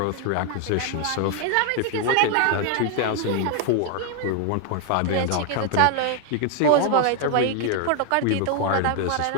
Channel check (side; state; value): both; different; correlation 0.01